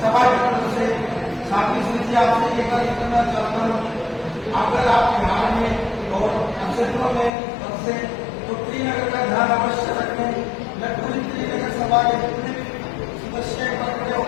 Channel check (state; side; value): drops out; right; at 7.3 s